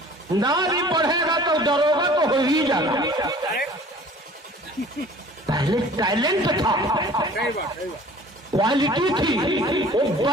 نہ بھی پڑھے گا تو دروگا تو ہو ہی جانا. پہلے ٹیلنٹ تھا، کوالٹی تھی. وہ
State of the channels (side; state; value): both; normal; correlation 0.48